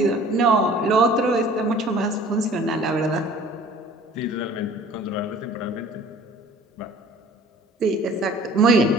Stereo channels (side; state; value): both; normal; correlation 0.49